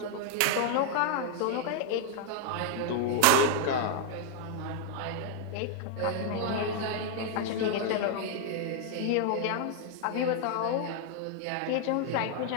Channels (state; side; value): different; both; correlation 0.00